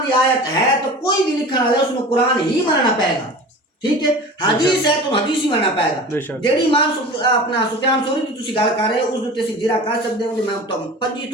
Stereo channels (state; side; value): normal; both; correlation 0.36